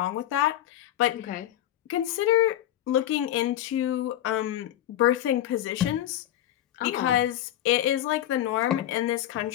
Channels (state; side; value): quieter; right; 12.4 dB